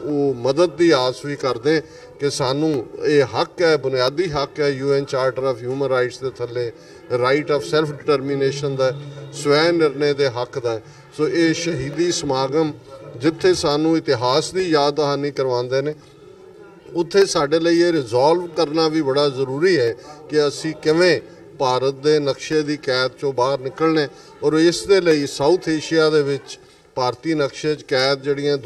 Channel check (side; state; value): both; identical; correlation 1.00